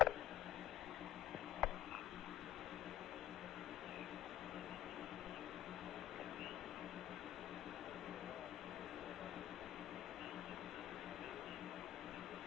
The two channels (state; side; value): quieter; right; 12.3 dB